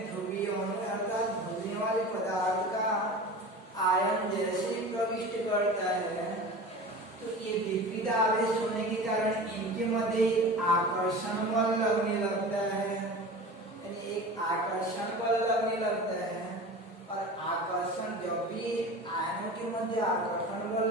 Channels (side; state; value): both; normal; correlation 0.35